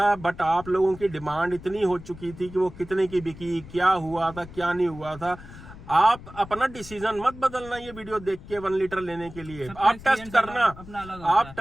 बट आप लोगों की डिमांड इतनी हो चुकी थी कि वो कितने की बिकी, क्या हुआ था, क्या नहीं हुआ था। आप अपना डिसीजन मत बदलना ये वीडियो देख के 1 लीटर लेने के लिए। आप टेस्ट करना, आप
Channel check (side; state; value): left; noise; rumble, 16 dB below the sound